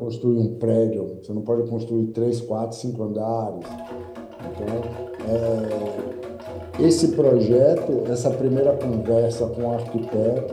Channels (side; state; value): both; identical; correlation 1.00